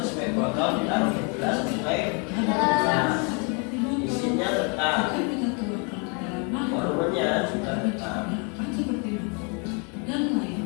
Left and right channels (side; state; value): right; quieter; 35.2 dB